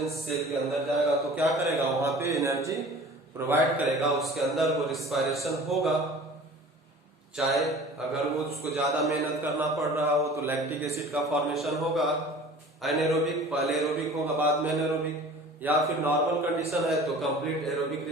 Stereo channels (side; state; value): both; normal; correlation 0.44